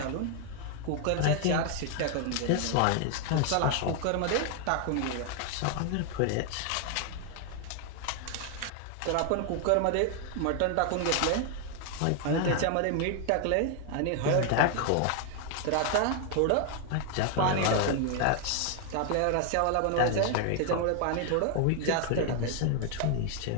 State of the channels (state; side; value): different; both; correlation 0.00